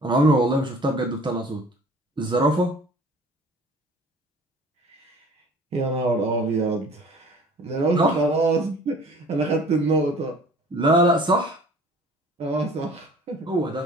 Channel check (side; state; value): both; normal; correlation 0.48